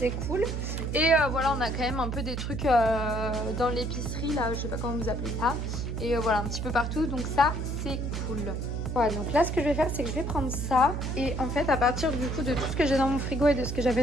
cool. Et voilà, on a quand même un peu des trucs dans l'épicerie là, je sais pas comment vous appelez ça. Et voilà, un petit peu partout, donc ça c'est cool. Voilà, donc là ce que je vais faire c'est que je vais prendre ça. Et en fait à partir du coup de tout ce que j'ai dans mon frigo et de ce que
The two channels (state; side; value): noise; right; hum, 3 dB below the sound